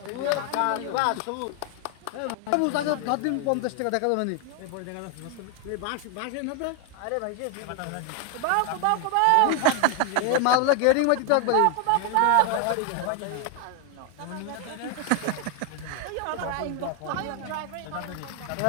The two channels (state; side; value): different; both; correlation 0.00